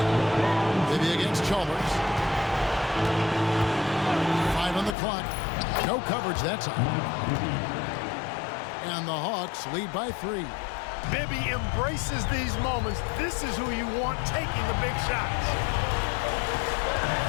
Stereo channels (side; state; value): right; drops out; at 5.0 s